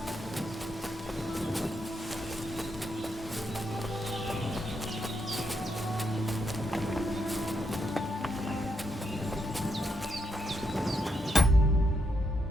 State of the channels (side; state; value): both; normal; correlation 0.80